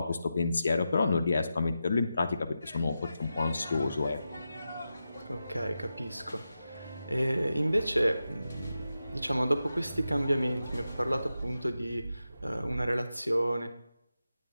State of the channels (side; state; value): both; inverted; correlation -0.90